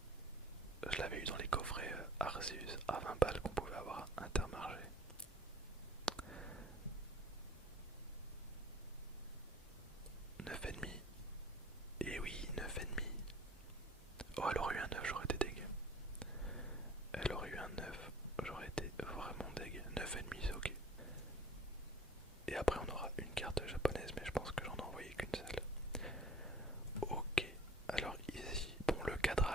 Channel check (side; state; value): both; normal; correlation 0.49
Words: Je l'avais eu dans les coffrets Arceus à 20 balles qu'on pouvait avoir à Intermarché. 9,5. Et oui, 9,5. Oh, elle aurait eu un 9, j'aurais été deg. Elle aurait eu un 9, j'aurais été vraiment deg. 9,5, c'est ok. Et après, on aura une carte japonaise, mais je pense que j'en ai envoyé qu'une seule. Ok, alors ici, bon, le